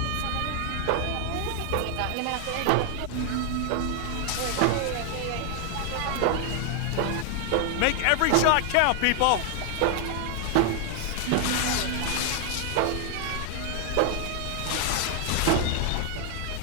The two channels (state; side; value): different; both; correlation 0.00